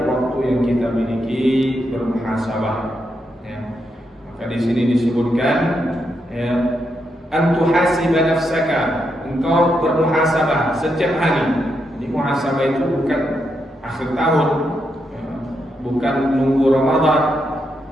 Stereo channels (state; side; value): normal; both; correlation 0.82